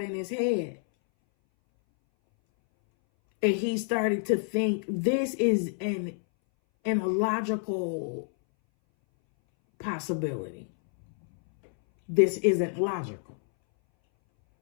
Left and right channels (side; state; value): right; silent; 59 dB below the other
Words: in his head. And he started to think this is an illogical possibility. This isn't logical.